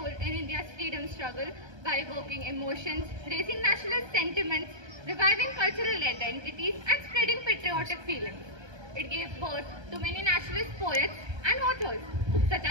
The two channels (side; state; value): left; late; 1.3 ms